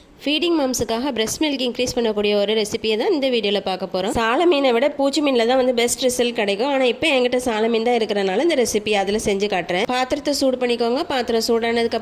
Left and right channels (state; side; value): identical; both; correlation 1.00